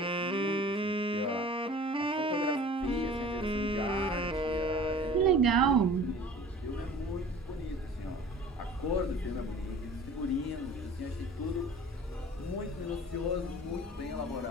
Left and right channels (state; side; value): normal; both; correlation 0.44